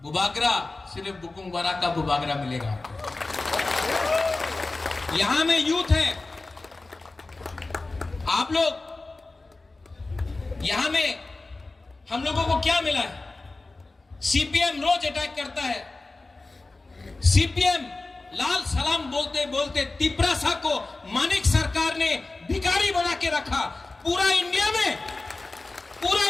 बुबागरा सिर्फ बुकुंबारा का बुबागरा मिलेगा आपको। यहां में यूथ है, आप लोग यहां में, हम लोगों को क्या मिला है? सीपीएम रोज अटैक करता है। सीपीएम लाल सलाम बोलते बोलते त्रिपुरासा को मानिक सरकार ने भिखारी बना के रखा। पूरा इंडिया में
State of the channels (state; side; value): quieter; right; 3.3 dB